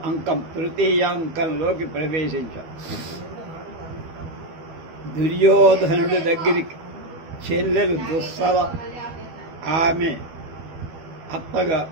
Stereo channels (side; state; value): left; late; 12 ms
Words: అంకం తృతీయాంకంలోకి ప్రవేశించాం. దుర్యోధనుడి దగ్గరికి చెల్లెలు దుస్సల ఆమె అత్తగా